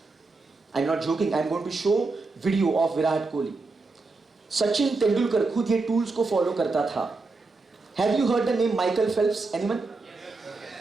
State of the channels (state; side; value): quieter; left; 3.7 dB